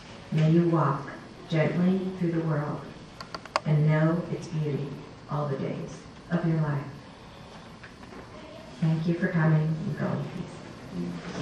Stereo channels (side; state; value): both; identical; correlation 1.00